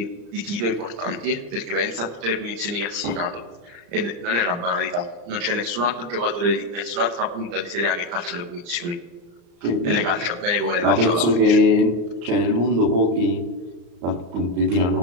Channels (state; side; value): late; left; 34 ms